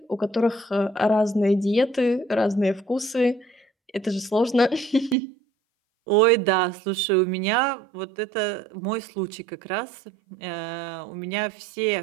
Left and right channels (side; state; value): left; drops out; at 5.2 s